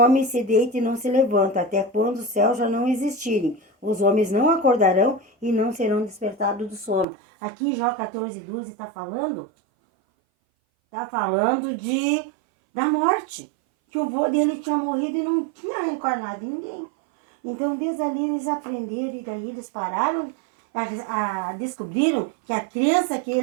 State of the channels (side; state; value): left; drops out; at 7.1 s